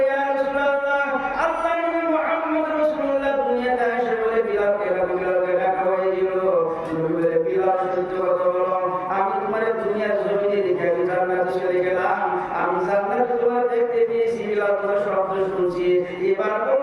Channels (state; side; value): identical; both; correlation 1.00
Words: ইয়া রাসূলুল্লাহ, আল্লাহ নবী মুহাম্মদ রাসূলুল্লাহ দুনিয়াতে এসে বলে, বিলালকে